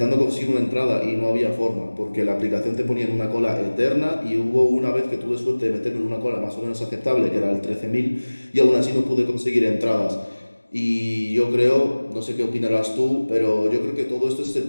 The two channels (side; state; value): both; inverted; correlation -1.00